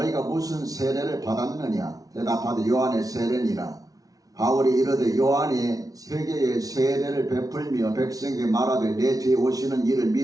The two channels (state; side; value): late; left; 0.18 ms